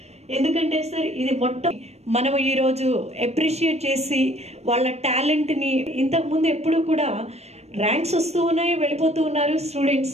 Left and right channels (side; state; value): left; late; 0.31 ms